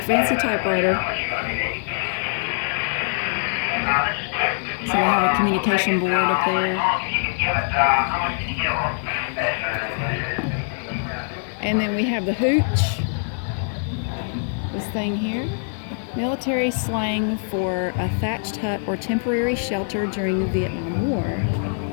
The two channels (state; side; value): silent; right; digital silence